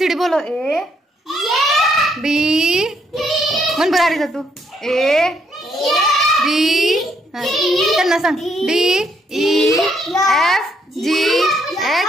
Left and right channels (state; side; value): normal; both; correlation 0.73